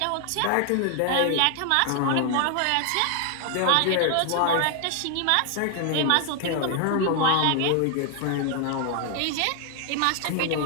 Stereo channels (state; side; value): different; both; correlation 0.00